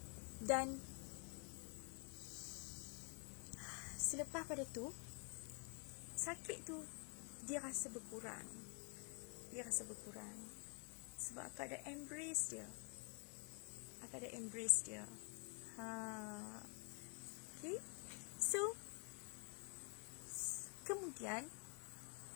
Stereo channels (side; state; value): right; quieter; 38.1 dB